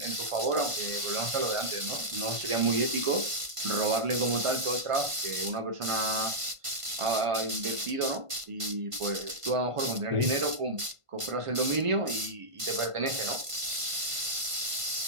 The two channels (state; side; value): late; left; 1.5 ms